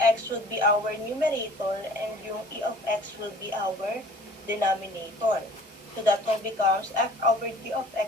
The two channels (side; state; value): both; normal; correlation 0.49